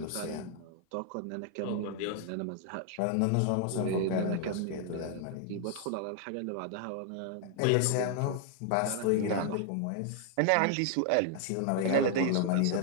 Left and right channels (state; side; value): different; both; correlation 0.00